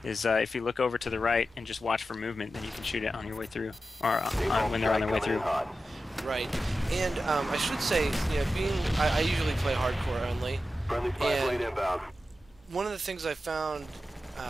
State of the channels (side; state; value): both; normal; correlation 0.92